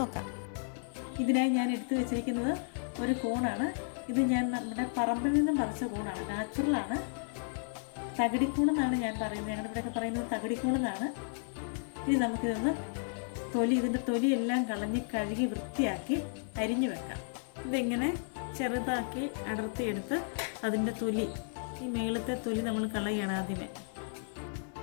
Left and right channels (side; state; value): right; silent; digital silence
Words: നോക്കാം. ഇതിനായി ഞാൻ എടുത്തു വെച്ചിരിക്കുന്നത് ഒരു കൂണാണ്. ഇത് ഞാൻ നമ്മുടെ പറമ്പിൽ നിന്നും പറിച്ച കൂണാണ്, നാച്ചുറലാണ്. തകിടിക്കൂണെന്നാണ് ഞാൻ പറയുന്നത്, ഞങ്ങളുടെ ഇവിടെയൊക്കെ പറയുന്നത് തകിടിക്കൂണെന്നാണ്. ഇനി നമുക്കിതൊന്ന് ഇതിൻ്റെ തൊലിയെല്ലാം കളഞ്ഞ് കഴുകി വൃത്തിയാക്കി അരിഞ്ഞു വെക്കാം. ഇതിങ്ങനെ ചെറുതാക്കി അടർത്തിയെടുത്ത് അതിൻ്റെ തൊലി, ഈ മേളത്തെ തൊലി നമ്മൾ കളയുകയാണ് ആദ്യമേ.